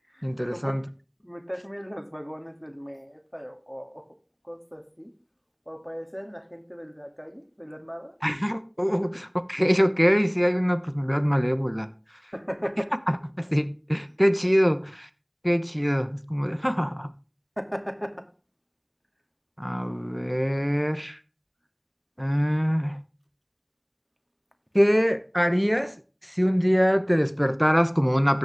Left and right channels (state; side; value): identical; both; correlation 1.00